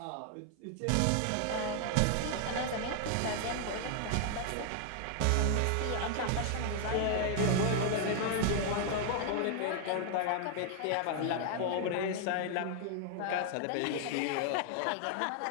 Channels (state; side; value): different; both; correlation 0.00